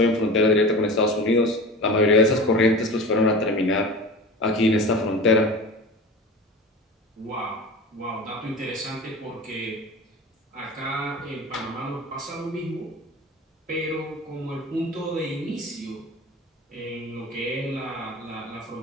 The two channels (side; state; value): both; normal; correlation 0.34